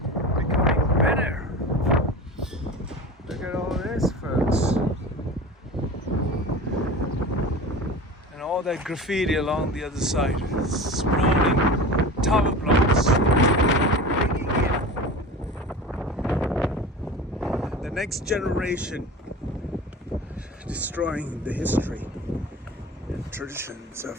becoming better. Look at all this, folks. And all that graffiti along the other side, sprawling tower blocks, the next generation, destroying the history and traditions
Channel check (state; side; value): normal; both; correlation 0.33